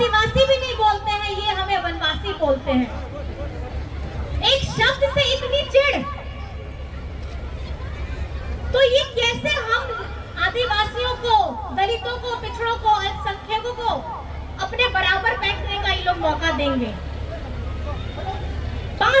भी नहीं बोलते हैं, ये हमें वनवासी बोलते हैं। एक शब्द से इतनी चिढ़, तो ये कैसे हम आदिवासियों को, दलितों को, पिछड़ों को, अल्पसंख्यकों को अपने बराबर बैठने का ये लोग मौका देंगे?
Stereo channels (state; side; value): identical; both; correlation 1.00